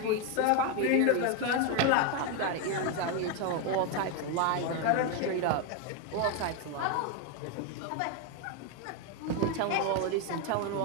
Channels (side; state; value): both; different; correlation 0.01